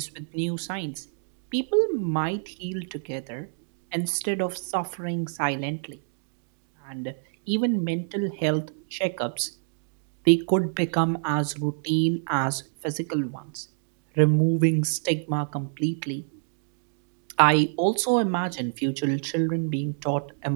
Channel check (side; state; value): left; silent; digital silence